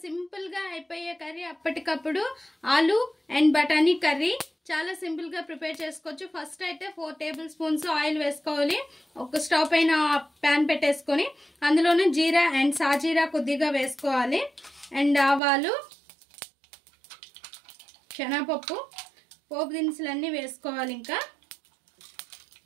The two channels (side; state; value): left; drops out; at 15.4 s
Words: simple గా అయిపోయే కర్రీ, అప్పటికప్పుడు ఆలు అండ్ బఠానీ కర్రీ చాలా సింపుల్ గా ప్రిపేర్ చేసుకోవచ్చు. ఫస్ట్ అయితే 4 టేబుల్ స్పూన్స్ ఆయిల్ వేసుకోవాలి. ఒక స్టవ్ పైన ప్యాన్ పెట్టేసుకొని అందులోనే జీరా అండ్ సాజీరా కొద్దిగా వేసుకోవాలి. అండ్ ఆవాలు, శనగపప్పు, పోపు దినుసులన్నీ వేసుకోవాలి. ఇంకా